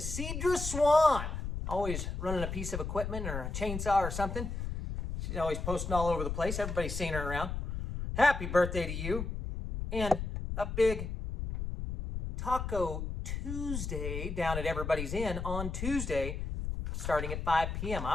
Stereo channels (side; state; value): left; noise; rumble, 4 dB below the sound